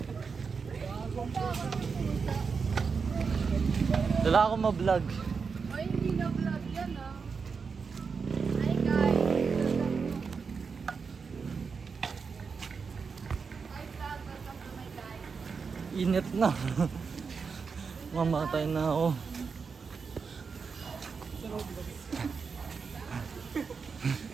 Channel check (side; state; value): left; quieter; 5.4 dB